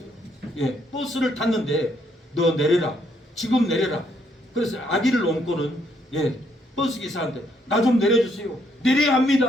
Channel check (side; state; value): both; normal; correlation 0.72